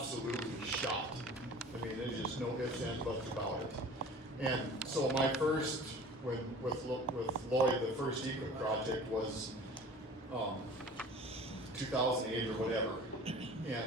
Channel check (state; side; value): normal; both; correlation 0.43